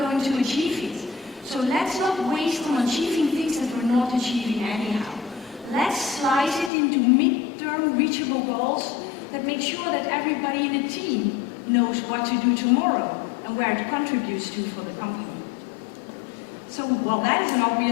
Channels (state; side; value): drops out; right; at 6.7 s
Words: to achieve it. So let's not waste on achieving things that we're not achieving anyhow. Let's slice it into mid-term reachable goals that make sure that everybody in the team knows what to do tomorrow and where it contributes to for the company. So, well, that is an